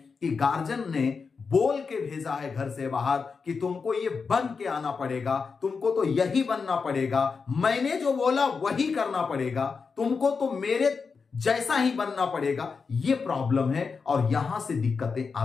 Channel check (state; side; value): quieter; right; 5.1 dB